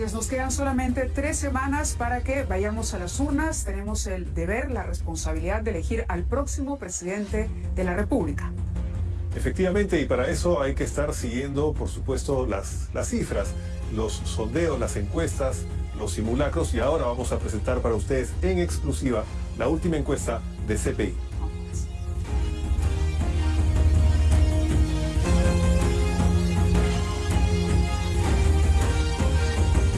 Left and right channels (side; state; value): both; identical; correlation 1.00